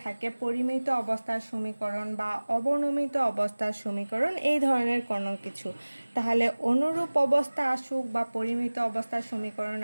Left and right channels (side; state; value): both; inverted; correlation -1.00